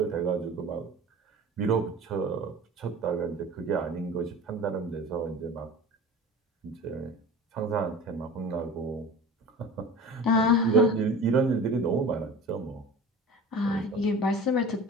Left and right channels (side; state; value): both; normal; correlation 0.37